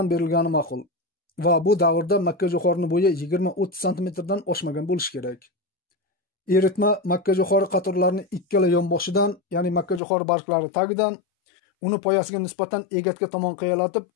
berilgani ma'qul. Va bu davrda makka jo'xorining bo'yi 20-30 cm dan oshmagan bo'lishi kerak. Eritma makka jo'xori qatorlarining ikkala yonboshidan, ya'ni makka jo'xori barglari tagidan, uni poyasiga nisbatan egatga tomon qiyalatib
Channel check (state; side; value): drops out; right; at 10.0 s